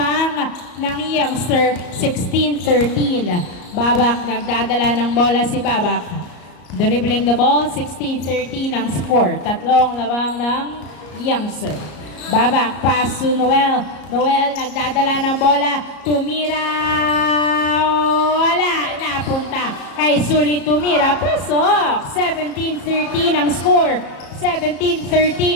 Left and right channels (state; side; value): late; right; 34 ms